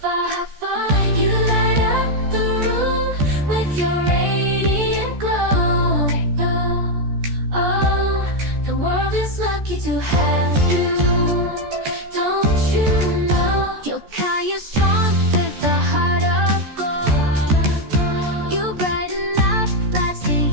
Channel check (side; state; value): left; late; 14 ms